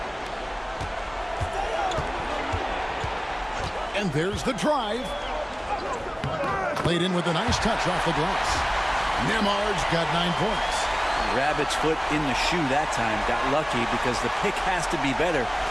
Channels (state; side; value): identical; both; correlation 1.00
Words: And there's the drive. Played in with a nice touch off the glass. Nemhard's got 9 points. Rabbit's foot in the shoe that time. Got lucky because the pick has to be better.